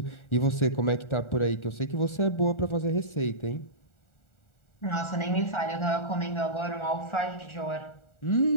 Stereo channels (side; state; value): right; late; 1.4 ms